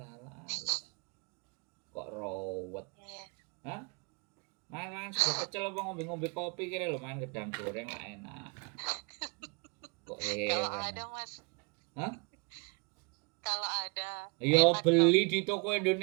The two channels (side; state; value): left; quieter; 32.9 dB